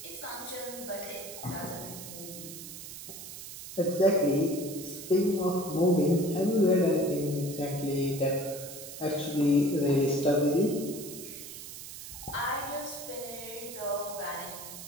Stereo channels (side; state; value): right; noise; hiss, 11 dB below the sound